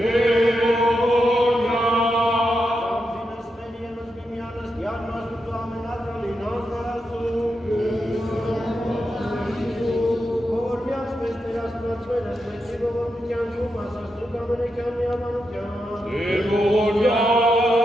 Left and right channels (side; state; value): both; normal; correlation 0.86